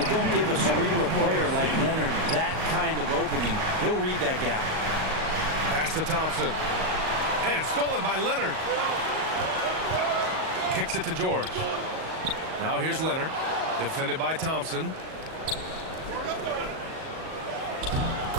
don't give a cerebral player like Leonard that kind of opening. He'll read that gap. Pass to Thompson. And stolen by Leonard. Kicks it to George. Now here's Leonard. Defended by Thompson.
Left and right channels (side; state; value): left; late; 38 ms